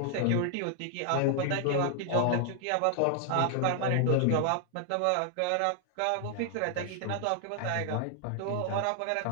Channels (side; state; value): both; different; correlation 0.00